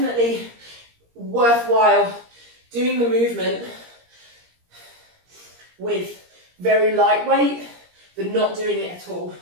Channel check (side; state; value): left; late; 17 ms